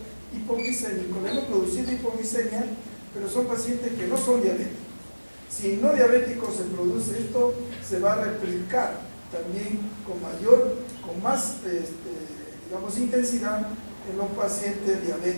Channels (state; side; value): inverted; both; correlation -1.00